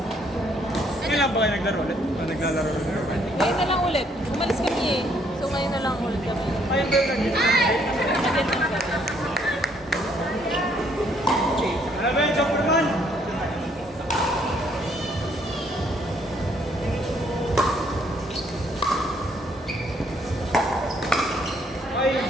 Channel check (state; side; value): normal; both; correlation 0.67